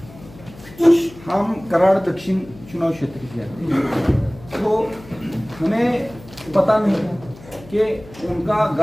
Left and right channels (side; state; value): left; noise; hum, 20 dB below the sound